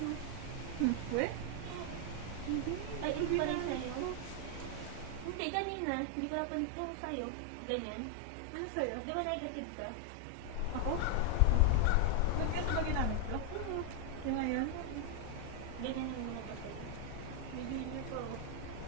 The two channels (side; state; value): both; different; correlation 0.00